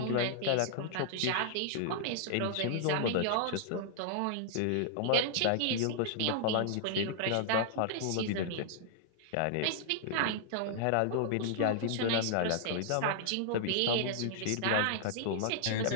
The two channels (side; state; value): both; different; correlation -0.01